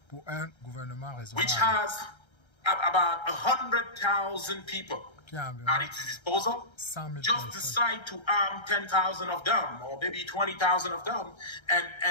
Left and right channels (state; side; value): late; right; 1.3 ms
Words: pour un gouvernement raisonnable which has about 100,000 people at its disposal just decide to arm 10,000 of them or maybe 20,000 of them